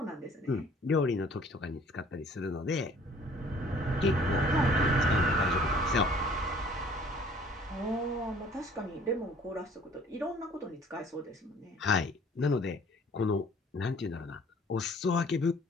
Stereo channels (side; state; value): both; normal; correlation 0.54